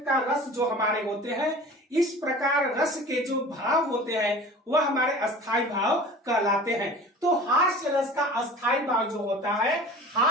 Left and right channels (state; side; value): normal; both; correlation 0.40